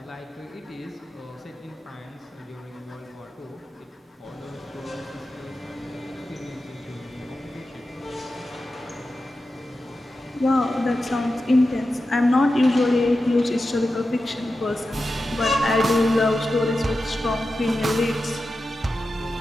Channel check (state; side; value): normal; both; correlation 0.92